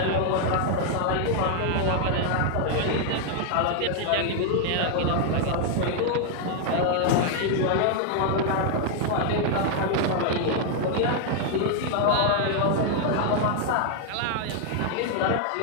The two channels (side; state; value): both; different; correlation 0.00